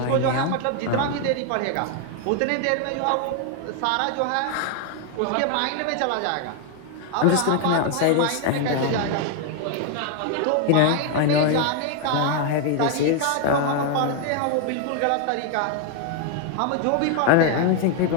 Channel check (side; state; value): both; different; correlation 0.01